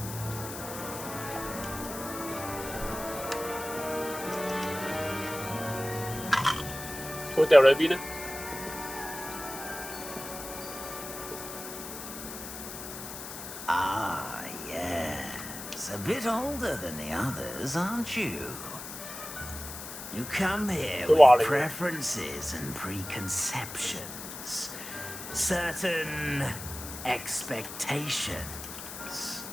佢掉裏邊呢？ Ah, yes. A bit older than the others, aren't you? You come here with preferences and preconceptions. Certain expectations.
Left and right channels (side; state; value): left; noise; hiss, 10 dB below the sound